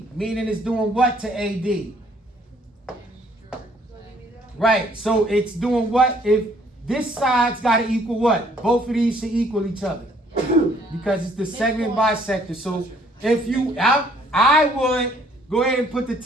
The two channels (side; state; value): both; normal; correlation 0.62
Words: meaning it's doing what to AD? Right, so it's doing what? If this side's got to equal what? Both of these should equal each other because it's the segment bisector. So if you, I would go ahead and put the